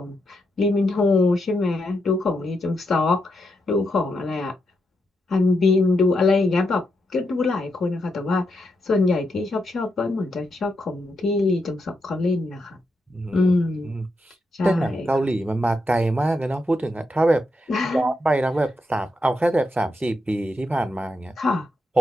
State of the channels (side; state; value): both; normal; correlation 0.83